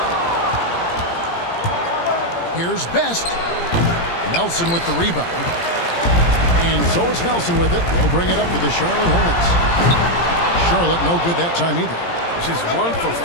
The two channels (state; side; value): late; right; 17 ms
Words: Here's Best. Nelson with the rebound. And so it's Nelson with it. They'll bring it up for the Charlotte Hornets. Charlotte no good that time either. Just 1 for